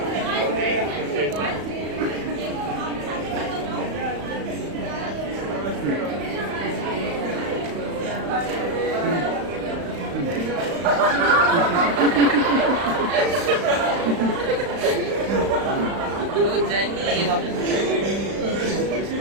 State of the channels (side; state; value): left; late; 35 ms